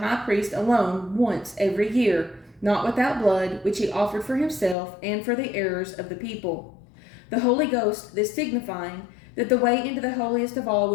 priest alone once every year, not without blood, which he offered for himself and for the errors of the people. The Holy Ghost this signifying, that the way into the holiest of all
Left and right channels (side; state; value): right; drops out; at 4.8 s